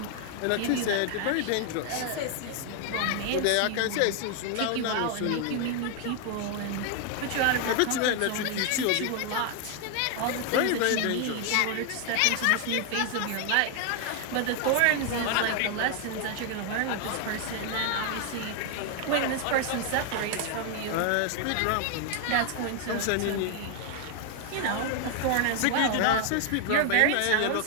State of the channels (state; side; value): different; both; correlation 0.01